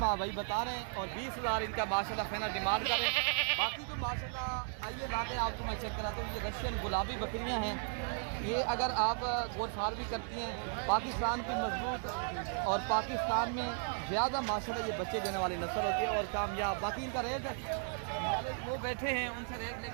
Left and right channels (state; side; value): silent; left; 54 dB below the other